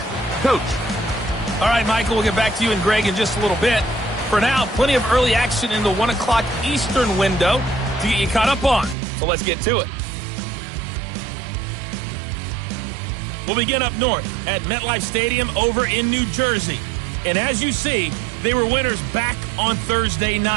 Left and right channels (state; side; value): drops out; left; at 9.0 s